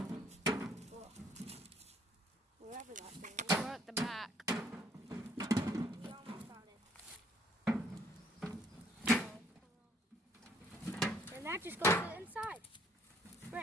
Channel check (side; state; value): both; normal; correlation 0.63